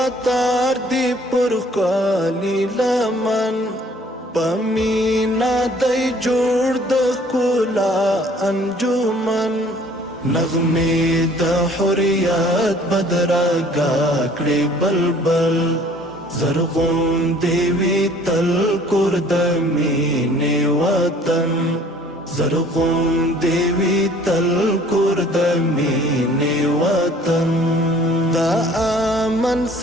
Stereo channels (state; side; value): normal; both; correlation 0.54